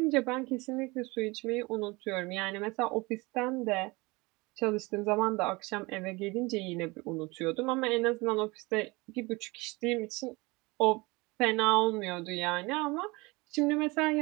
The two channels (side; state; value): left; quieter; 24.5 dB